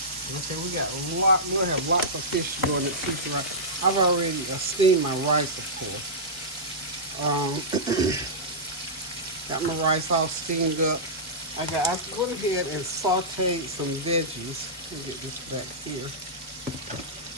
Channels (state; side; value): normal; both; correlation -0.14